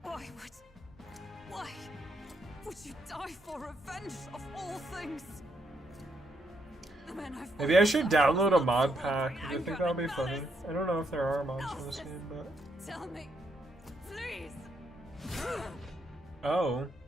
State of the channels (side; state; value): both; normal; correlation 0.77